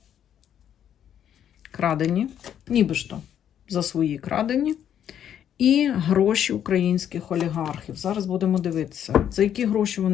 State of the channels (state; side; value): quieter; right; 9.7 dB